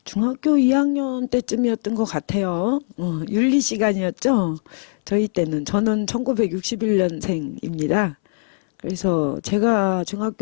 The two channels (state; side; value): silent; right; 65 dB below the other